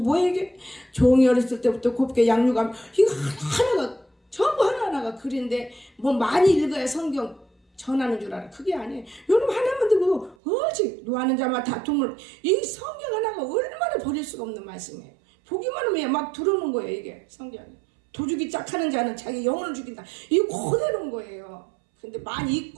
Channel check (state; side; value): drops out; left; at 10.4 s